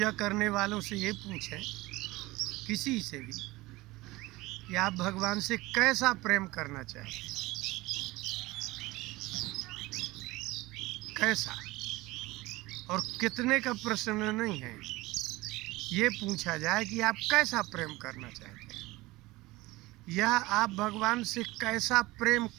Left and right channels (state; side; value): quieter; left; 20.2 dB